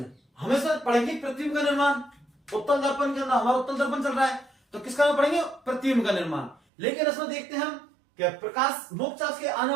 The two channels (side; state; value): left; drops out; at 6.6 s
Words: हमेशा पढ़ेंगे प्रतिबिंब का निर्माण। उत्तल दर्पण के अंदर हमारा उत्तल दर्पण चल रहा है, तो किसका पढ़ेंगे? प्रतिबिंब का निर्माण। लेकिन इसमें देखते हैं हम कि प्रकाश मोक्षाक्ष के आने